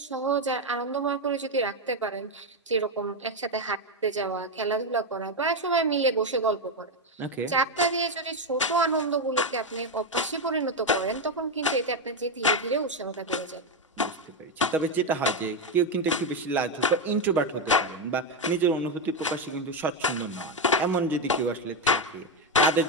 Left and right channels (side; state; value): both; normal; correlation 0.08